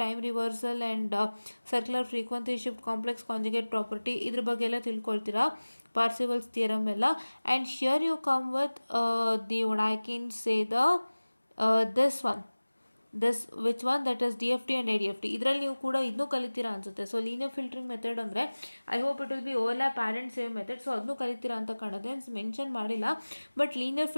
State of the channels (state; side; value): inverted; both; correlation -1.00